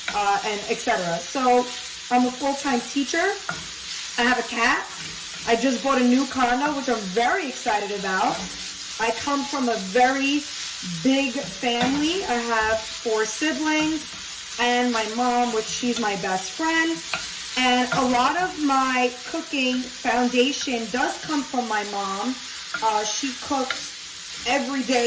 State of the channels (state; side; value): identical; both; correlation 1.00